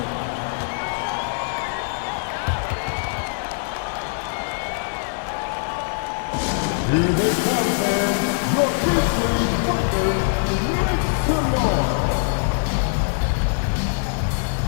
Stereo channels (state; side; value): silent; right; 64 dB below the other